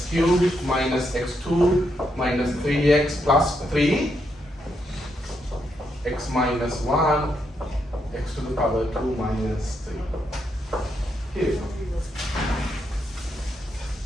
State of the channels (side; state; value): both; normal; correlation 0.79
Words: cubed minus x2 minus 3x plus 3, x minus 1, x to the power 2 minus 3. Here we go.